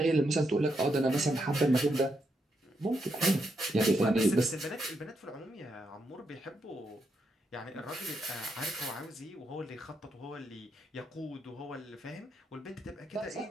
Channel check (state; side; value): normal; both; correlation 0.81